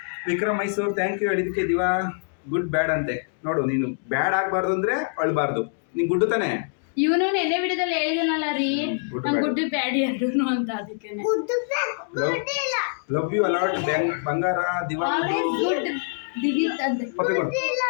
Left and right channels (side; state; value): right; silent; digital silence